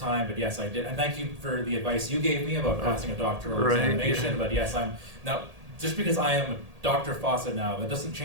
But yes, I did, and thank you for the advice you gave me about passing a doctoral examination. Yeah. But yes, I'm now just because I am Dr. Fawcett now, that doesn't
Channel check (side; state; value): left; late; 1.8 ms